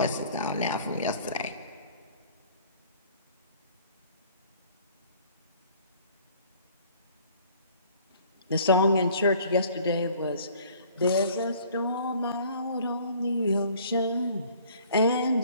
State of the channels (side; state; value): both; inverted; correlation -0.54